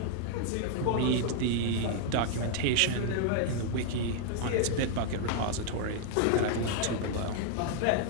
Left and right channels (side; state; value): both; different; correlation 0.00